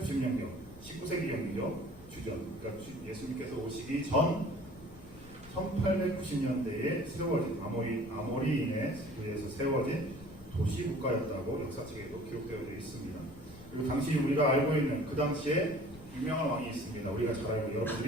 19세기경이죠. 주전 그러니까 예수님께서 오시기 전 1890년대에 세워진 아모리인에 의해서 세워진 도시 국가였다고 역사책에도 기록되어 있습니다. 그리고 당시 우리가 알고 있는 그 당시에 유명한 왕이 있습니다. 우리가 잘 알고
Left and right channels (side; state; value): left; noise; rumble, 20 dB below the sound